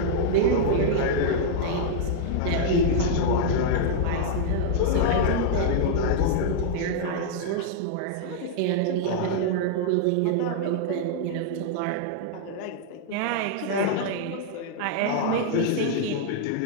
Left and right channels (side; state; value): both; different; correlation -0.01